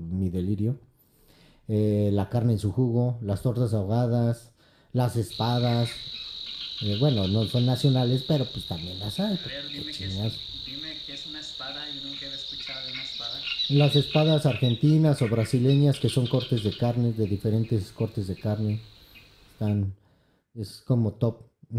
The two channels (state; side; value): identical; both; correlation 1.00